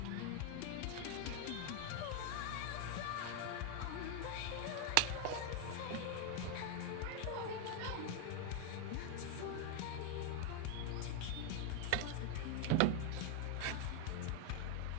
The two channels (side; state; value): both; different; correlation 0.01